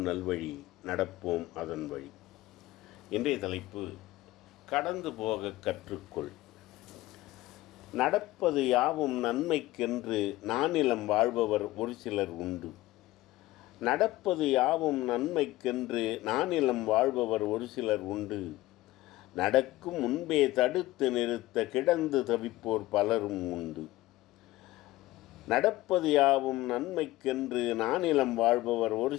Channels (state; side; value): quieter; right; 17.5 dB